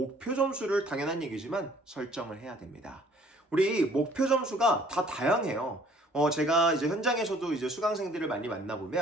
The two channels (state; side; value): normal; both; correlation 0.57